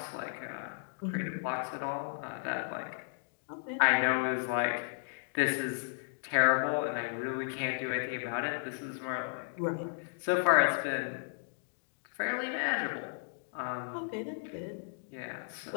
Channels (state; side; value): silent; right; digital silence